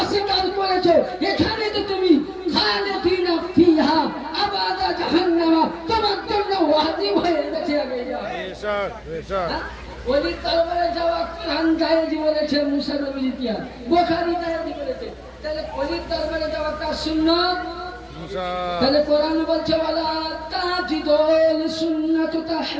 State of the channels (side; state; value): both; identical; correlation 1.00